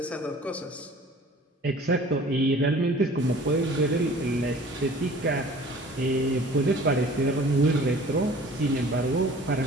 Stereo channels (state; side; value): normal; both; correlation 0.48